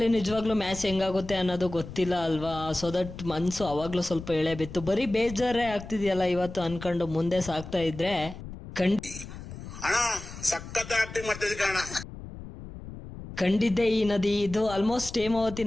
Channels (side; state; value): left; noise; rumble, 12 dB below the sound